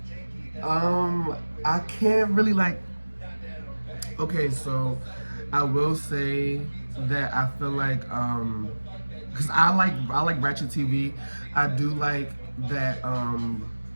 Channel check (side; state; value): both; inverted; correlation -1.00